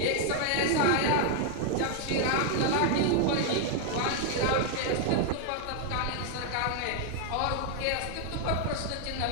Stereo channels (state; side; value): different; both; correlation 0.00